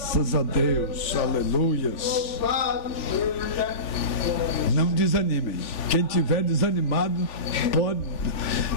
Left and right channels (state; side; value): late; right; 3.4 ms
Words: a Deus, aleluias. Não desanimem. Quem tiver desanimado pode